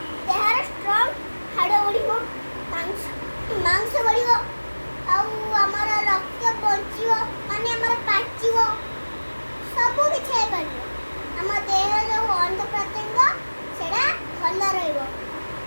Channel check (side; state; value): both; inverted; correlation -1.00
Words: ଦେହର ଷ୍ଟ୍ରଙ୍ଗ ହାଡ଼ ବଢ଼ିବ, ମାଂସ ବଢ଼ିବ, ଆଉ ଆମର ରକ୍ତ ବଞ୍ଚିବ, ମାନେ ଆମର ପାଚିବ, ସବୁ କିଛି ହେଇପାରିବ। ଆମ ଦେହର ଯେଉଁ ଅଙ୍ଗ ପ୍ରତ୍ୟଙ୍ଗ ସେଟା ଭଲ ରହିବ।